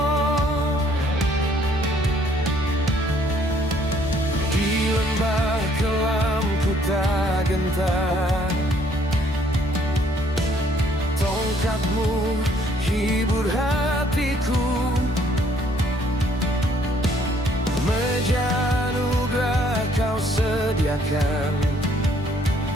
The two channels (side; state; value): both; normal; correlation 0.64